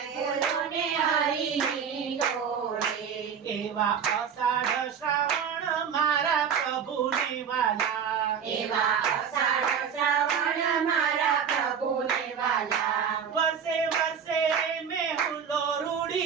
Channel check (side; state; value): left; quieter; 7.4 dB